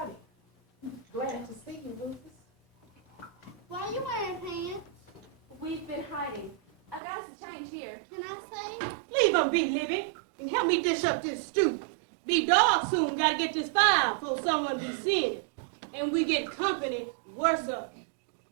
Glad to see you, Rufus. Why are you wearing pants? We've been hiding. I got us a change here. Can I say? Leave her be, Libby, and help me dish up this stew. Be dark soon, gotta get this fire before someone be seeing it. And we get company worse up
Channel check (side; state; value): left; drops out; at 7.0 s